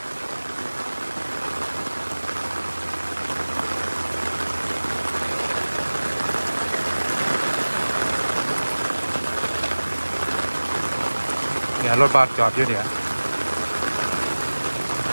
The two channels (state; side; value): inverted; both; correlation -1.00